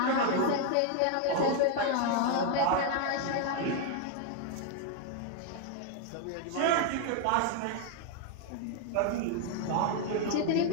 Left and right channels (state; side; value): different; both; correlation 0.00